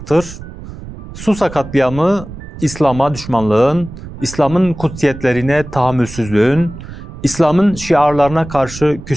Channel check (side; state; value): right; noise; rumble, 13 dB below the sound